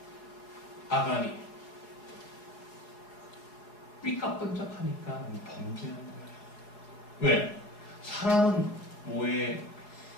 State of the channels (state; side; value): late; right; 4.7 ms